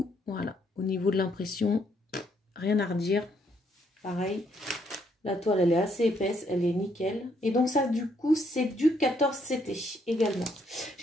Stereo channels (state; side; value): normal; both; correlation 0.72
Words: voilà, au niveau de l'impression, rien à redire. Pareil, la toile elle est assez épaisse, elle est nickel. Et donc ça du coup c'est du 14 CT également.